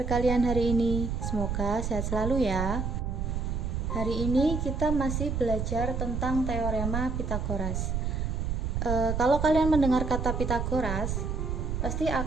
kalian hari ini? Semoga sehat selalu ya. Hari ini kita masih belajar tentang teorema Pitagoras. Kalau kalian mendengar kata Pitagoras, pasti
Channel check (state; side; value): noise; right; rumble, 1 dB below the sound